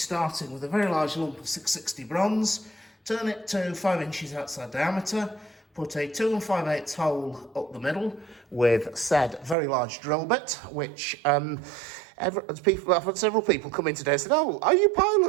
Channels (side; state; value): left; drops out; at 9.6 s